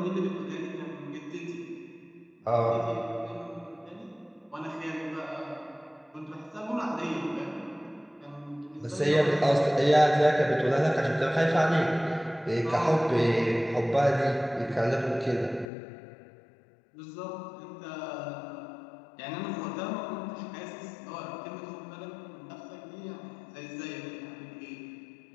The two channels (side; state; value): right; drops out; at 15.7 s